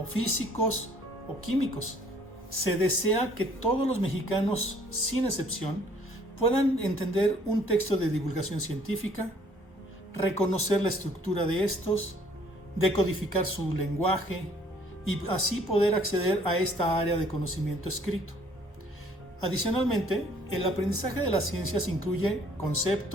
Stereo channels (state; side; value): normal; both; correlation 0.60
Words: físicos o químicos. Se desea que todos los mexicanos, sin excepción, puedan entender un texto de divulgación científica, reconocer la estructura de estos, decodificar su lenguaje y así poder acceder a esta área de conocimiento escrito. Adicionalmente, el aprendizaje de las ciencias incluye